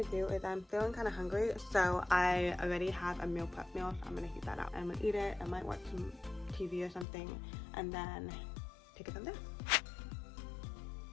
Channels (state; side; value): drops out; right; at 7.1 s